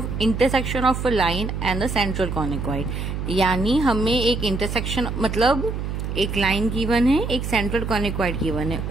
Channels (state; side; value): noise; right; hum, 4 dB below the sound